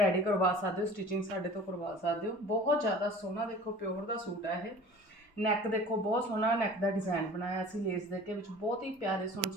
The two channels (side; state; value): both; normal; correlation 0.43